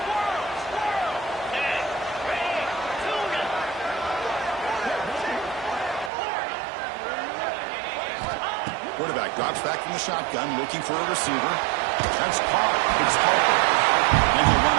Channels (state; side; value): drops out; left; at 6.1 s